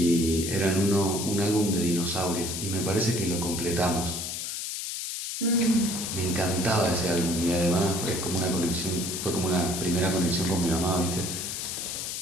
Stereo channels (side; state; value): left; noise; hiss, 4 dB below the sound